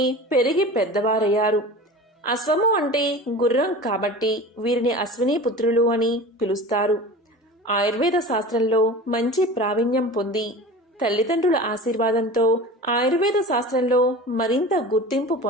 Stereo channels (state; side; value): normal; both; correlation 0.36